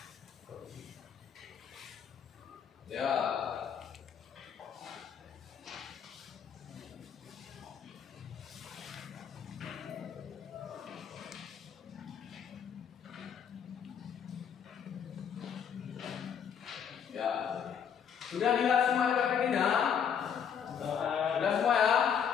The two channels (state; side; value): quieter; right; 7.8 dB